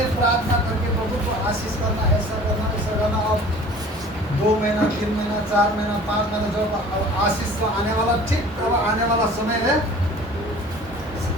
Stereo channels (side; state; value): both; normal; correlation 0.46